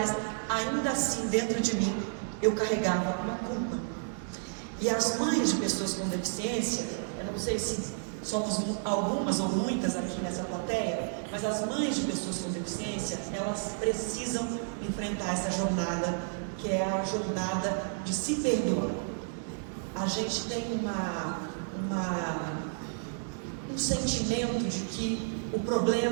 ainda assim, dentro de mim, eu carregava uma culpa. E as mães de pessoas com deficiência, eu não sei se somos algumas ou muitas aqui nessa plateia, mas as mães de pessoas com deficiência, elas precisam enfrentar essa jornada, que é a jornada de se perdoar. A gente tem um sentimento de que o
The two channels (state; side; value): silent; left; digital silence